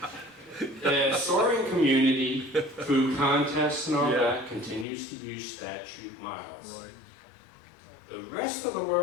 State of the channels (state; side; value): drops out; right; at 4.9 s